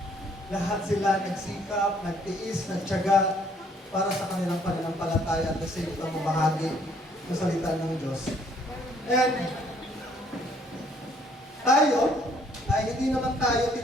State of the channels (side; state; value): both; normal; correlation 0.64